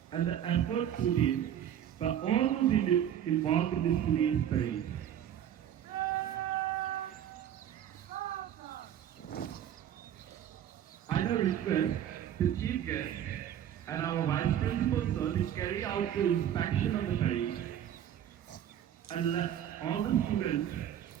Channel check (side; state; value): left; quieter; 10.4 dB